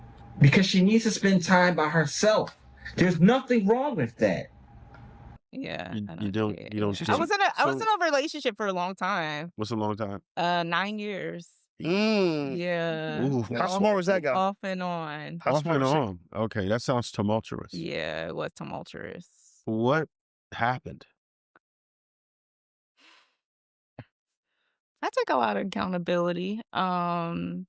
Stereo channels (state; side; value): identical; both; correlation 1.00